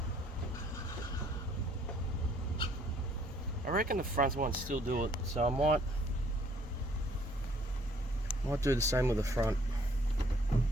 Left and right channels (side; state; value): both; normal; correlation 0.62